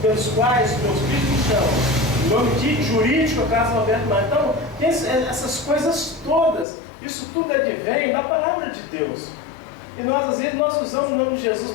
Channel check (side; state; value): right; drops out; at 6.7 s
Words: pelos quais meus filhos me chamam. O nome de jurídico é Carlos Alberto Marques. Então, tem essas coisas todas. Isso tudo advém da palavra de Deus. E nós, às vezes, nós usamos o nome de Jesus